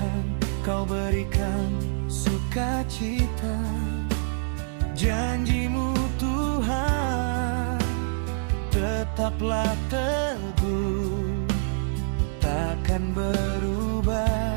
Kau berikan sukacita. Janji-Mu Tuhan tetaplah teguh, takkan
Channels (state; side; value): silent; left; digital silence